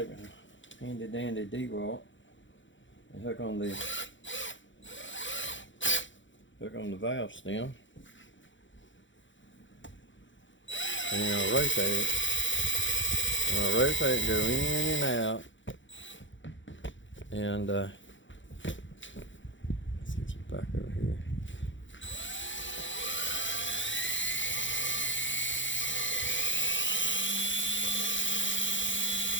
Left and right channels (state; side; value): late; right; 0.55 ms